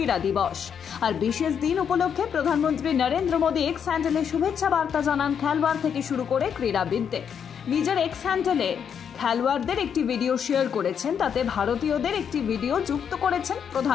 দিবস। আর বিশেষ দিন উপলক্ষে প্রধানমন্ত্রী নরেন্দ্র মোদী এক্স হ্যান্ডেলে শুভেচ্ছা বার্তা জানান খেলোয়াড় থেকে শুরু করে ক্রীড়াবিদদের। নিজের এক্স হ্যান্ডেলে খেলোয়াড়দের একটি ভিডিও শেয়ার করেছেন, তাতে ভারতীয়দের একটি ভিডিও যুক্ত করেছেন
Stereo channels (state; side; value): quieter; right; 7.7 dB